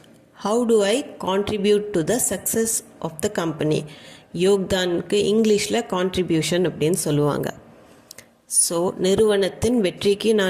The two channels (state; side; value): identical; both; correlation 1.00